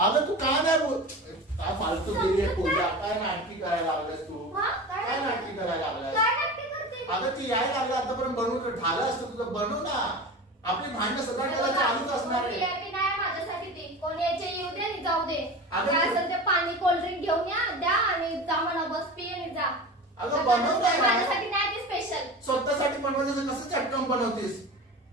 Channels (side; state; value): both; normal; correlation 0.31